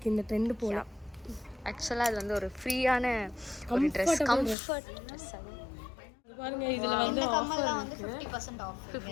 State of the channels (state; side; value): drops out; right; at 4.5 s